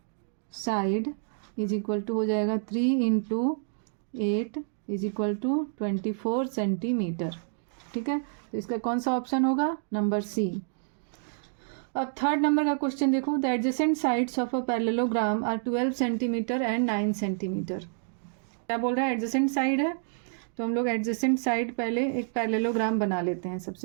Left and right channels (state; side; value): silent; left; digital silence